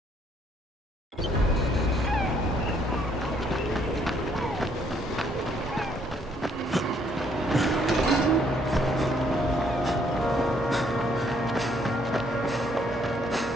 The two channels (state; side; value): normal; both; correlation 0.67